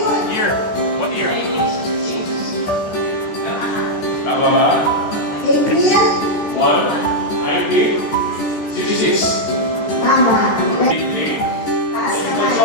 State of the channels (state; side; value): late; right; 14 ms